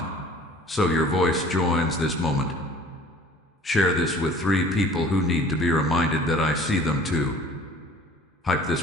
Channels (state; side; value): normal; both; correlation 0.48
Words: so your voice joins this moment. Share this with 3 people who need to be reminded that I see them too. Hype